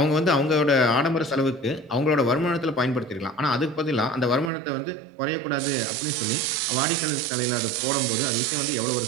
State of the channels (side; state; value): left; drops out; at 4.5 s